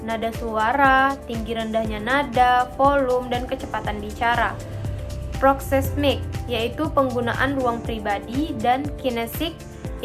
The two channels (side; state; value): both; identical; correlation 1.00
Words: nada suara, tinggi rendahnya nada, volume, dan kecepatan bicara. Proxemic, yaitu penggunaan ruang pribadi, dan kinesik,